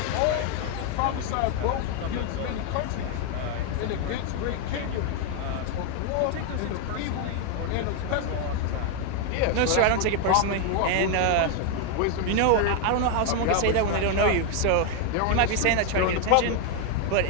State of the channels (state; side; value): different; both; correlation 0.01